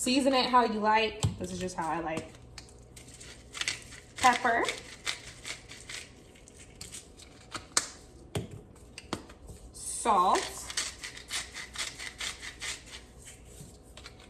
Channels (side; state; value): both; identical; correlation 1.00